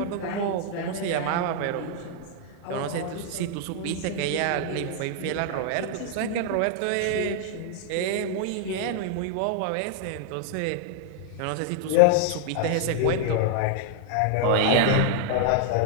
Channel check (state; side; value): different; both; correlation 0.00